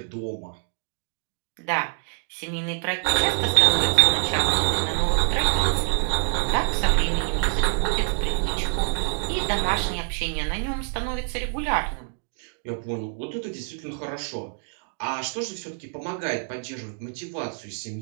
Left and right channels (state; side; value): silent; left; 61 dB below the other